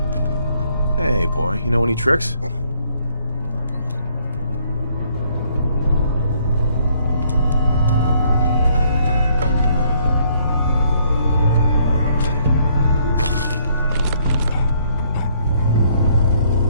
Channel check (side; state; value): both; inverted; correlation -0.67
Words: Hey, boy, you know any tricks?